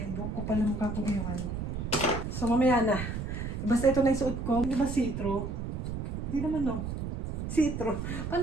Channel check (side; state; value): right; noise; rumble, 4 dB below the sound